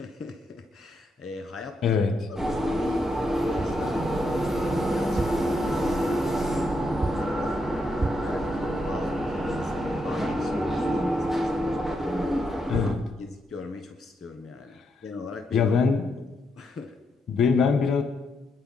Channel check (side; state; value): both; normal; correlation 0.81